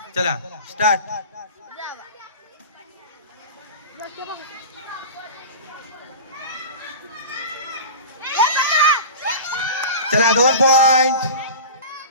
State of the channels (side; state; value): both; inverted; correlation -0.32